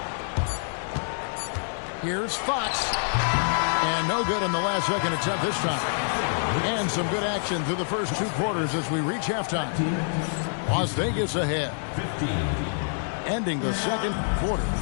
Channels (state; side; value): silent; right; digital silence